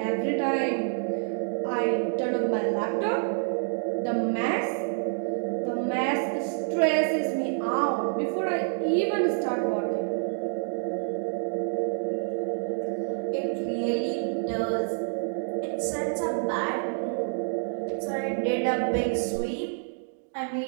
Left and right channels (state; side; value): silent; left; digital silence